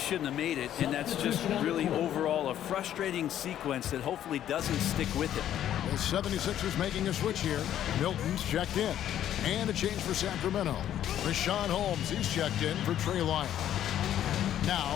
have made it, and that's just really overall a frustrating sequence that hopefully doesn't stick with him. The 76ers making a switch here. Milton's checked in. And a change for Sacramento. Rashawn Holmes, he's checked in for Trey Lyons. Now,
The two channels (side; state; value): right; quieter; 11.1 dB